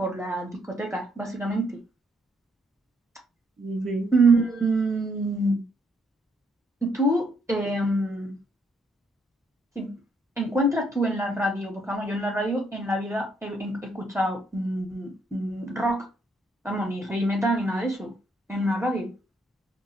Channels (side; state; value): both; normal; correlation 0.72